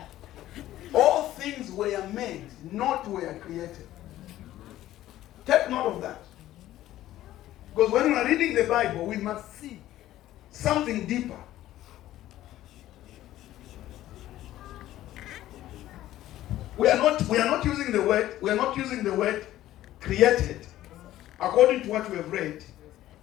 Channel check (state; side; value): quieter; right; 14.1 dB